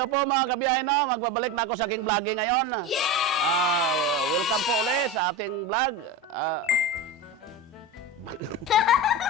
po mga kabiyahe, no? Magbabalik na ako sa aking vlogging ngayon. Welcome po ulit sa ating vlog.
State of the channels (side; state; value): both; normal; correlation 0.23